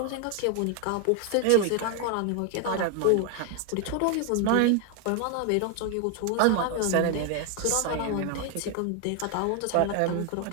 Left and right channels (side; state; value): both; different; correlation 0.01